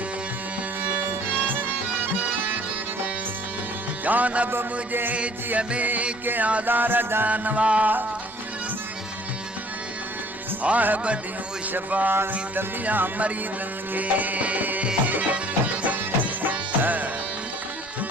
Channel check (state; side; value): normal; both; correlation 0.55